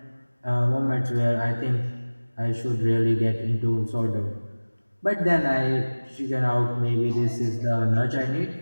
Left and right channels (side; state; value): both; inverted; correlation -1.00